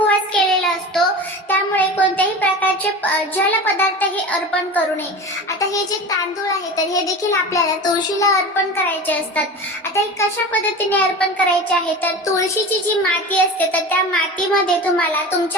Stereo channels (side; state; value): both; normal; correlation 0.31